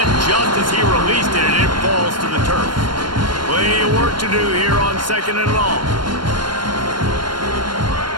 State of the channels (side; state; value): left; late; 0.72 ms